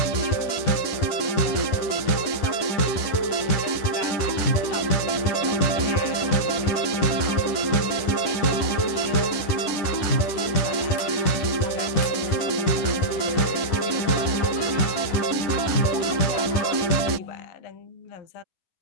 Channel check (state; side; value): late; right; 11 ms